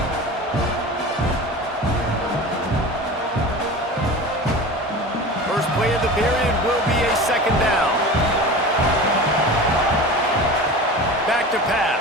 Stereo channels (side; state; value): both; normal; correlation 0.34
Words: First play of the period will be a second down. Back to